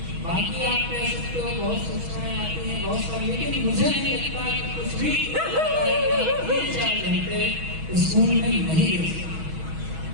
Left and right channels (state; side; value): late; left; 6.2 ms